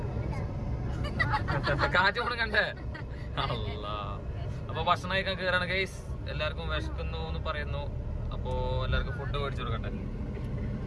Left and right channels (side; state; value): both; identical; correlation 1.00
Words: കാറ്റ് മുണങ്ങണ്ടേ? അല്ല അപ്പൊ ഭക്ഷണം കഴിക്കാൻ കയറാണ് ഗൈസ്. എല്ലാവർക്കും വിശക്കുന്നു എന്ന് പറയുന്നു. അപ്പോ എല്ലാവർക്കും ഫുഡ് മേടിച്ചു കൊടുക്കട്ടെ